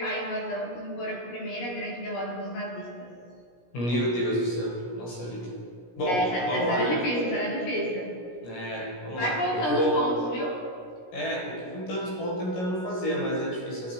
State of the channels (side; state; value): right; late; 17 ms